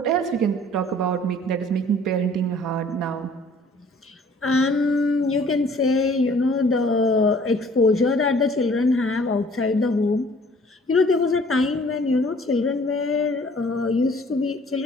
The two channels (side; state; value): both; normal; correlation 0.54